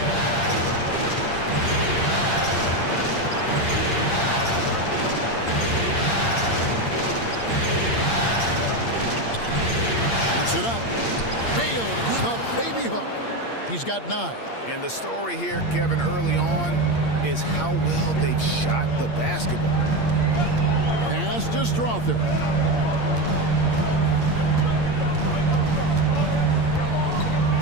It up. Nails the baby hook. He's got 9. And the story here, Kevin, early on is how well they've shot the basketball. Pass to Strother.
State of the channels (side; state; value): right; late; 8.6 ms